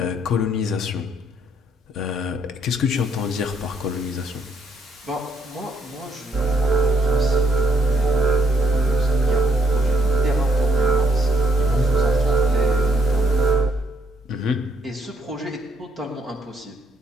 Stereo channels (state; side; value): normal; both; correlation 0.70